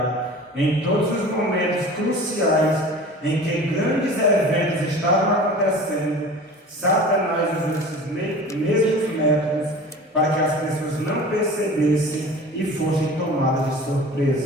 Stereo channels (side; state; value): both; normal; correlation 0.39